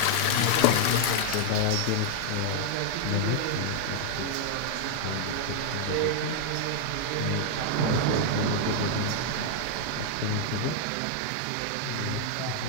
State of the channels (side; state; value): both; different; correlation 0.00